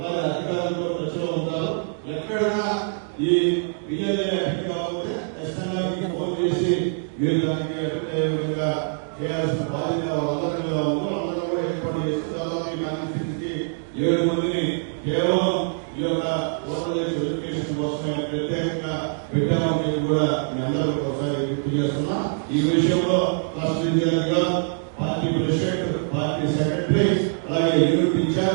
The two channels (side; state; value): left; silent; digital silence